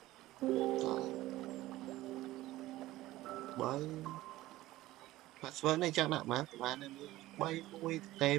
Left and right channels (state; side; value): quieter; left; 16.6 dB